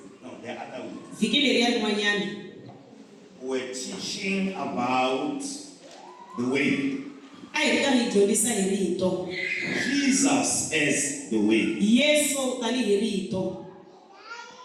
No, the other week. We're teaching about the way. Jesus as the way.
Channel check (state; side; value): identical; both; correlation 1.00